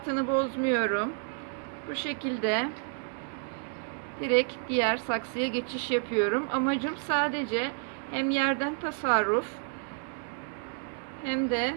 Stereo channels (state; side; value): silent; left; 57 dB below the other